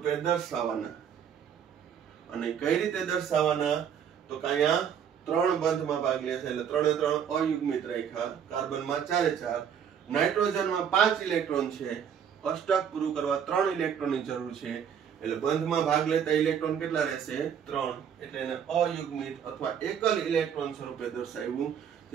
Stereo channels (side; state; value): left; quieter; 8.1 dB